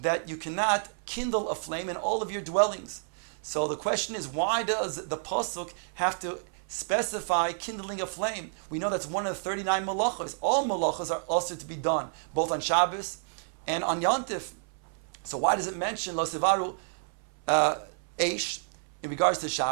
you cannot kindle a flame in all of your dwellings. So the question is, why does the Pasuk have to specify kindling a flame? We know that's one of the 39 malachos. All malachos are also to be done, both on Shabbos and on Yantif. So why does it mention Lo Sivaru Eish in regards to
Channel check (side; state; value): left; silent; 57 dB below the other